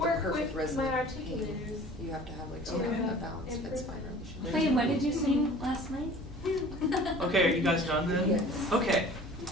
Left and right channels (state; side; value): normal; both; correlation 0.45